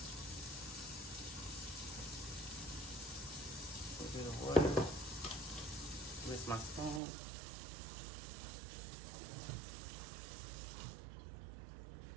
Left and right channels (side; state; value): left; drops out; at 7.0 s